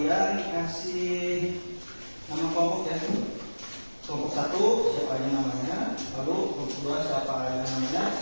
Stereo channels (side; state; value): both; inverted; correlation -1.00